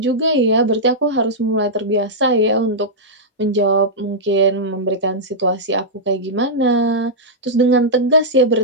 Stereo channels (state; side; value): normal; both; correlation -0.10